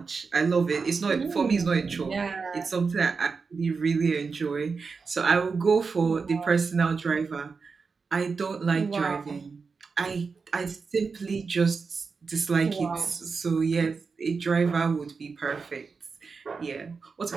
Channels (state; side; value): quieter; left; 4.9 dB